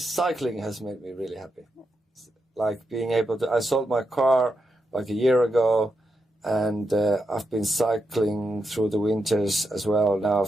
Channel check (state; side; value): normal; both; correlation 0.85